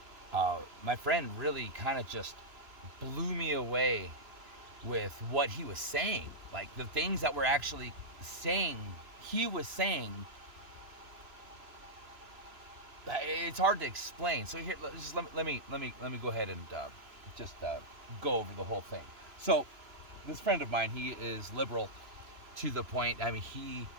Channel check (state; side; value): late; left; 2.9 ms